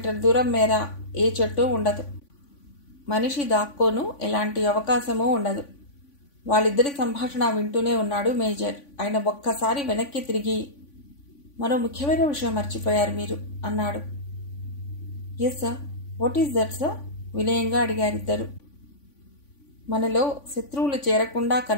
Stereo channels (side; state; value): right; late; 3.5 ms